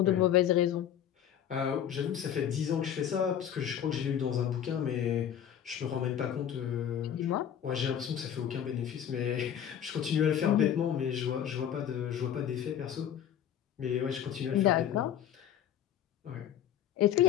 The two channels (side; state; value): right; quieter; 9.8 dB